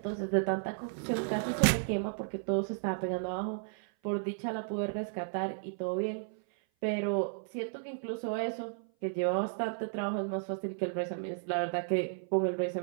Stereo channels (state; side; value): silent; left; 55 dB below the other